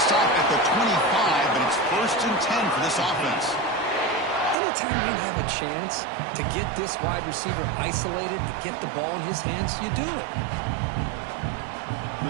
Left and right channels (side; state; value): left; drops out; at 4.5 s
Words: stop at the 25, but it's first and 10 for this offense. Anytime you have a chance to get this wide receiver isolated, to get the ball in his hands, you do it.